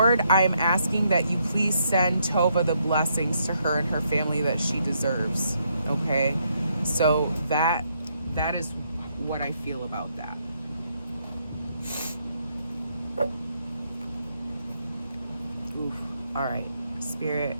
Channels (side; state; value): both; inverted; correlation -0.75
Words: I'm asking that you please send Tova the blessings to her and her family that she deserves. Okay? So that is what I feel about that. Oof. All right. Spirit,